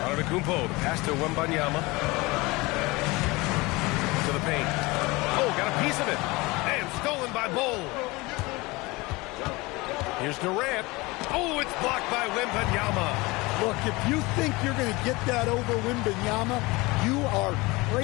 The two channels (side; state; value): right; quieter; 23.1 dB